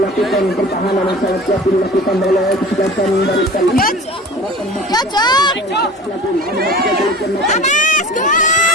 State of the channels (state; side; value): normal; both; correlation 0.39